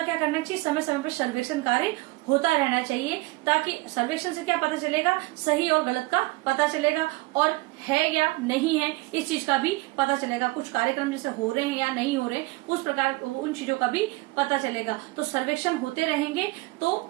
क्या करना चाहिए, समय समय पर सर्वेक्षण कार्य होता रहना चाहिए, ताकि सर्वेक्षण से क्या पता चलेगा, सही और गलत का पता चलेगा, और है या नहीं है इस चीज का भी पता चलेगा। कुछ कार्यक्रम जैसे हो रहे हैं या नहीं हो रहे, उस प्रकार उन चीजों का भी पता चलेगा। तो सर्वेक्षण होते रहेंगे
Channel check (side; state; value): left; quieter; 22.3 dB